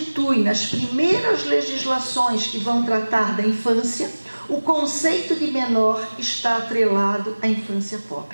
nas primeiras legislações que vão tratar da infância, o conceito de menor está atrelado à infância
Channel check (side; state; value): both; inverted; correlation -1.00